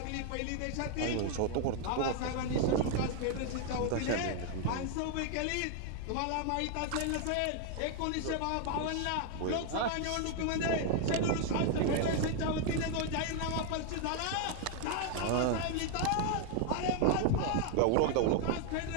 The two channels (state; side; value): different; both; correlation 0.00